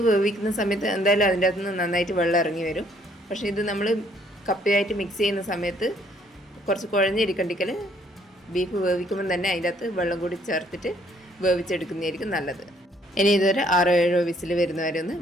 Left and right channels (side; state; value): both; normal; correlation 0.65